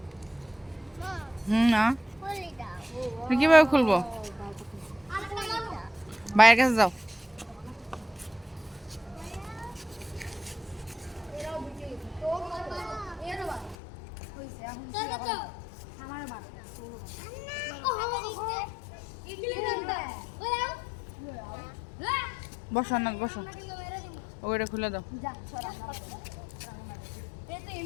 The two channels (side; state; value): right; drops out; at 13.8 s